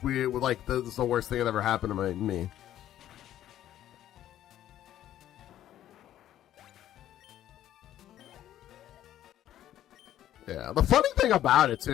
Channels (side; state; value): right; quieter; 12.2 dB